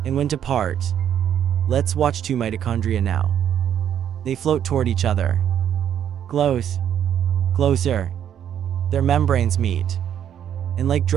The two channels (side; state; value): left; quieter; 9.6 dB